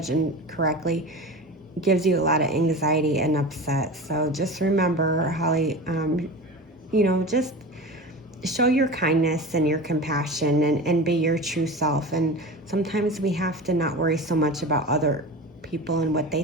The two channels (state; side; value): normal; both; correlation 0.31